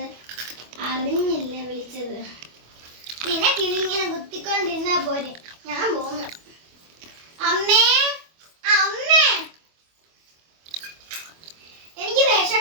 അറിഞ്ഞില്ല വിളിച്ചത്. നിനക്കിതിങ്ങനെ കുത്തിക്കൊണ്ടിരുന്നാ പോരെ. ഞാൻ പോന്നു. അമ്മേ അമ്മേ, എനിക്ക്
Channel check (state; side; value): late; left; 25 ms